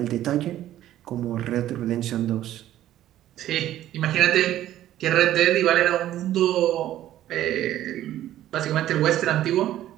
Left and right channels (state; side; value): quieter; left; 13.0 dB